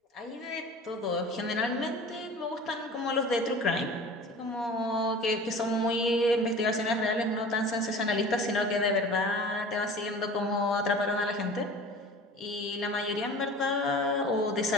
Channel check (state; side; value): normal; both; correlation 0.40